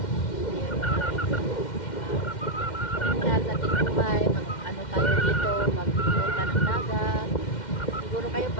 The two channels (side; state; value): right; late; 2.1 ms